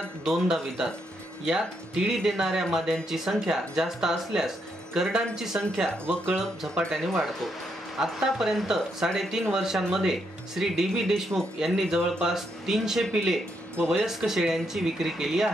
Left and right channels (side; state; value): both; normal; correlation 0.78